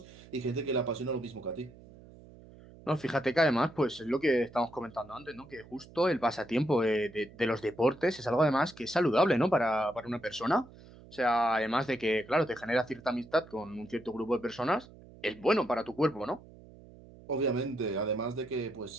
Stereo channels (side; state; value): right; noise; hum, 21 dB below the sound